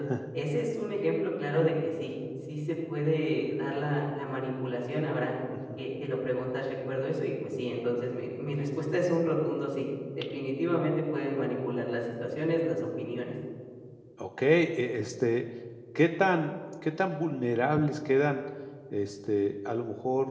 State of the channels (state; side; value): identical; both; correlation 1.00